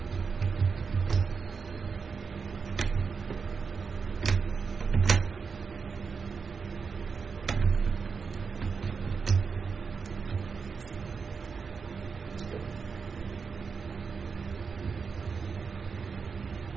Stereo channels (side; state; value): left; quieter; 5.4 dB